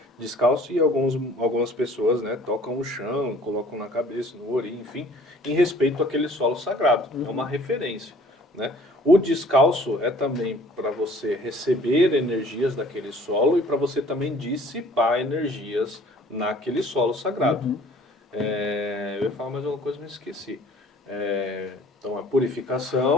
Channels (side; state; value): both; normal; correlation 0.53